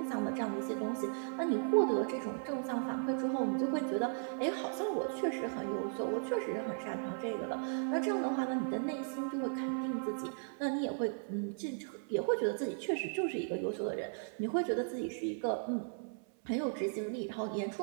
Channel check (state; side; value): silent; left; 54 dB below the other